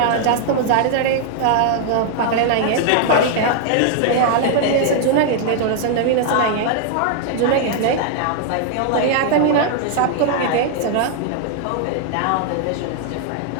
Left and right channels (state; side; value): different; both; correlation 0.00